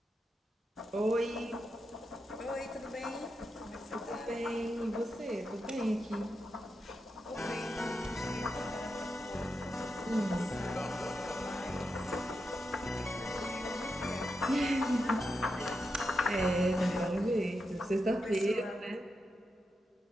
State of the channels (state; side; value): normal; both; correlation 0.87